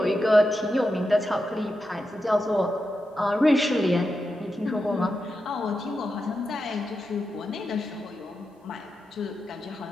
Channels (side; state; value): both; normal; correlation 0.88